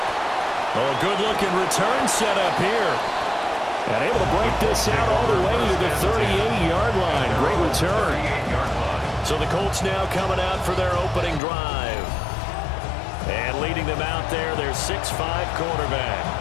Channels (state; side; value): drops out; right; at 11.4 s